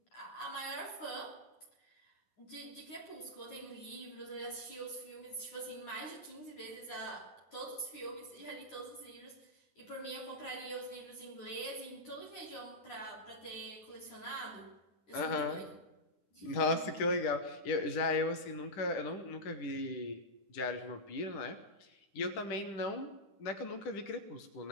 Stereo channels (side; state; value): right; late; 9.7 ms